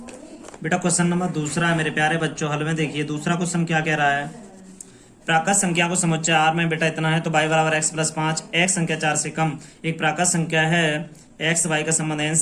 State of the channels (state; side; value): identical; both; correlation 1.00